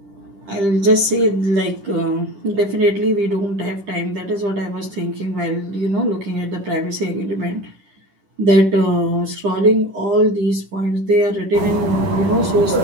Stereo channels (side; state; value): left; late; 10 ms